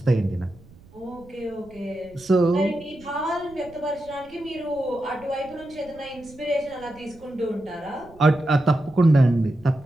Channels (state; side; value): noise; right; rumble, 23 dB below the sound